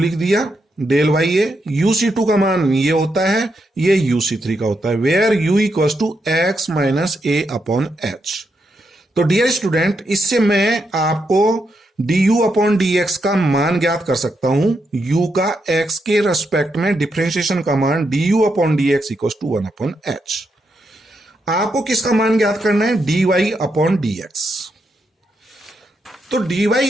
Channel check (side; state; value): both; normal; correlation 0.82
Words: दिया, डेल वाई ए। UC2 का मान ये होता है, ये UC3 का होता है, where u equal to X minus A upon H. तो डियर स्टूडेंट, इससे मैं आपको du अपॉन dx का मान ज्ञात कर सकता हूं। u का x के रेस्पेक्ट में डिफरेंशिएशन का मान du upon dx equal to 1 upon H. आपको किसका मान ज्ञात करना है, dy अपॉन dx। तो dy